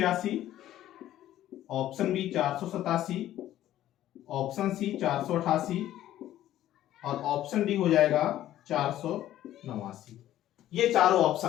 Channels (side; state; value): right; quieter; 13.1 dB